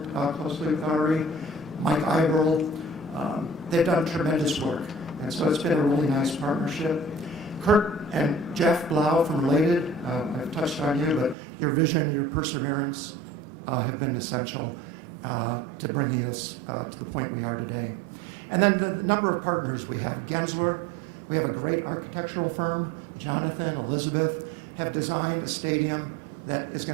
closely with Ari. Mike Iberl. They've done tremendous work. And so it's been a really nice partnership. Kurt and Jeff Blau from Related, I've touched on you, but your vision and your perseverance have been essential to bringing us to the point we are today. And then the number of partners we have. Gensler, we have a great architectural firm. Jonathan, Elizabeth have designed a stadium that is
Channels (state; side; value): drops out; left; at 11.4 s